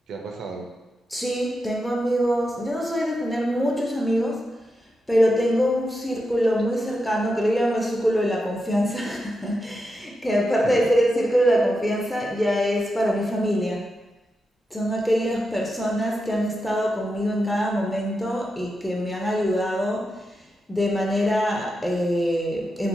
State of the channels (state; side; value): normal; both; correlation 0.87